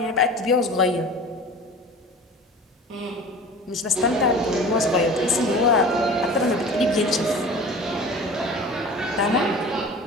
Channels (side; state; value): both; normal; correlation 0.39